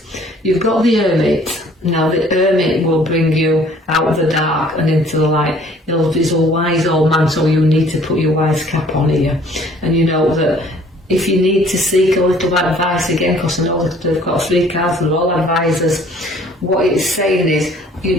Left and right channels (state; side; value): normal; both; correlation 0.56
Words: You've got the Hermit. Now the Hermit will bring you out of the dark and into the light. He's a wise old man, so you need to put your wise cap on here. And you know that if you need to seek a little advice again, because I know that they've got 3 cards, they're all advisors, what it's saying